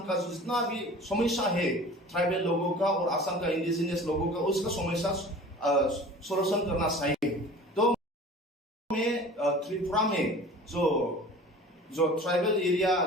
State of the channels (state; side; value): normal; both; correlation 0.42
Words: का जितना भी समस्या है ट्राइबल लोगों का और असम का इंडिजिनियस लोगों का, उसका समस्या सोल्यूशन करना चाहिए। तो में त्रिपुरा में जो ट्राइबल एरिया